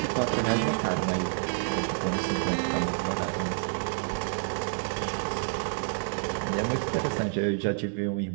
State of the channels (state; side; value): silent; left; digital silence